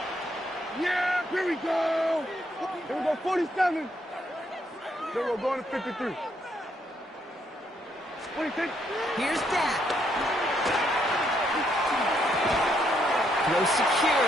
Yeah, here we go. Here we go, 47. Then we're going to 53. 26. Here's Dak. Throw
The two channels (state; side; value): normal; both; correlation 0.74